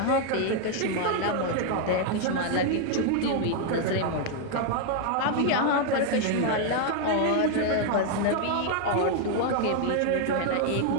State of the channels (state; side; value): different; both; correlation 0.00